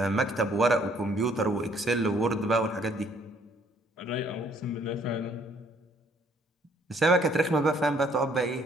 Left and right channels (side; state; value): both; normal; correlation 0.64